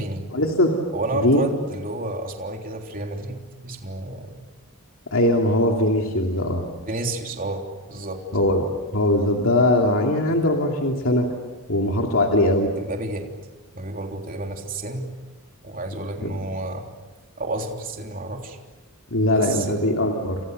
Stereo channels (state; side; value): normal; both; correlation 0.07